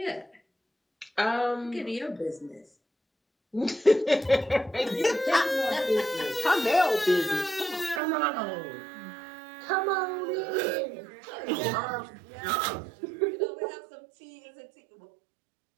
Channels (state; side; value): drops out; left; at 8.0 s